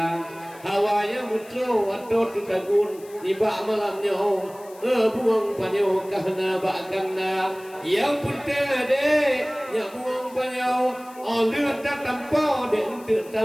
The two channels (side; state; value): left; noise; hiss, 23 dB below the sound